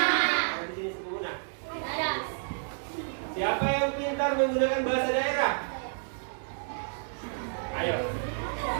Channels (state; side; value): silent; left; digital silence